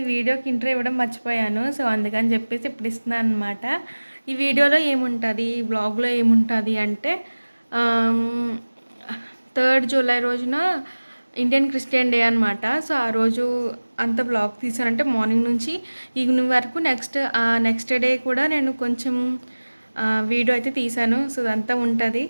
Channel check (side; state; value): both; inverted; correlation -1.00